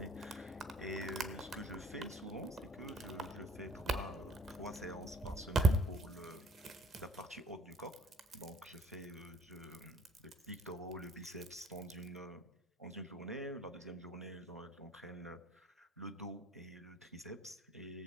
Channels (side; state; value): both; normal; correlation 0.58